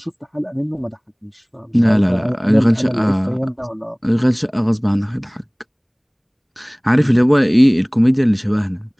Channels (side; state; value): both; identical; correlation 1.00